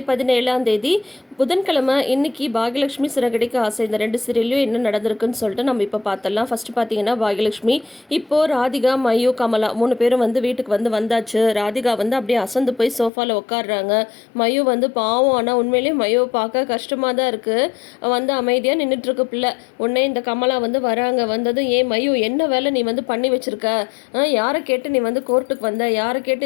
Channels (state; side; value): drops out; right; at 13.1 s